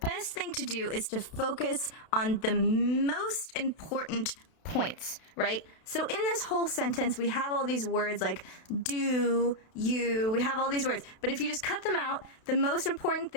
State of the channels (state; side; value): late; right; 32 ms